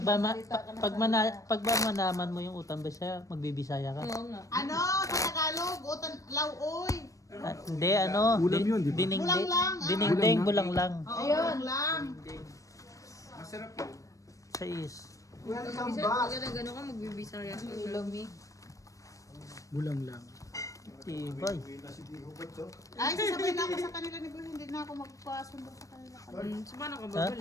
ba, magsalita ka ng salita. pag ba manaman mo yung utang Bisaya, magbibisaya ka? Oo nga. Ano? Sa Tagalog, utan, lauoy. Hindi, ano, Ulam yun, di ba? Bulang lang, ah. dinengdeng, bulang lang. Oo, Ayun. lang. Masarap yun. Sa is. Pag gano'n ka, magbibisaya ka. Ulami. Bulang lang. Tibay. Ay, sasabay na ako sa kanila ni Boy. Hindi na ako magpasundo sa kanila. So, paano ka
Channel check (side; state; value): right; late; 0.16 ms